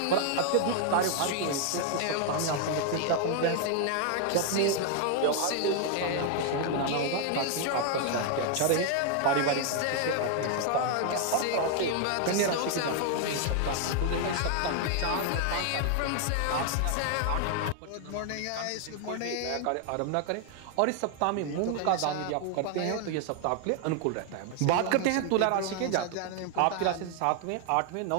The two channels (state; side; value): different; both; correlation 0.00